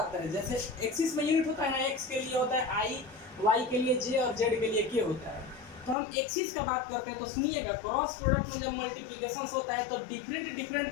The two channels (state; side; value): drops out; right; at 6.0 s